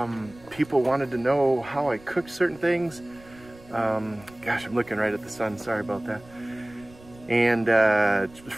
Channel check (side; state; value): right; noise; rumble, 23 dB below the sound